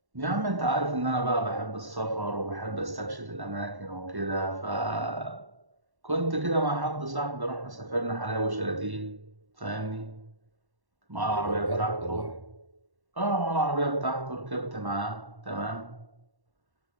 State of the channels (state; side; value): late; left; 1.1 ms